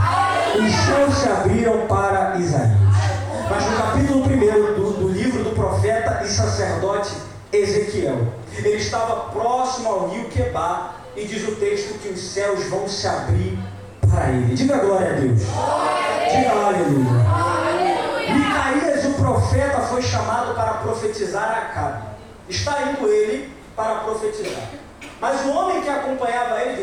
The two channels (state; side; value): identical; both; correlation 1.00